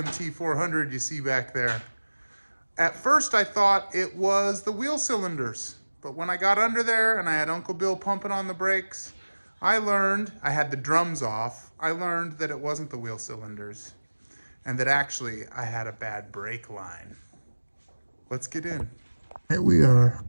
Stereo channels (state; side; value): inverted; both; correlation -1.00